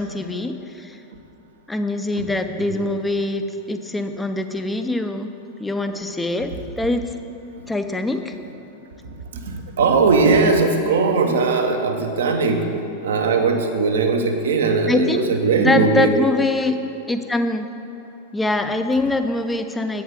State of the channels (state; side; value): normal; both; correlation 0.10